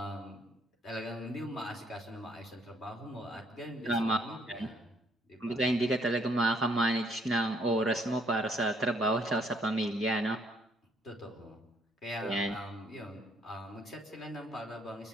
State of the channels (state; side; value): normal; both; correlation 0.67